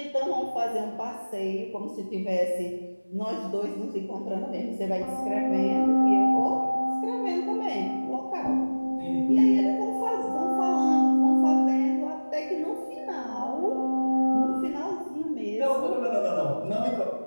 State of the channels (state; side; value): inverted; both; correlation -1.00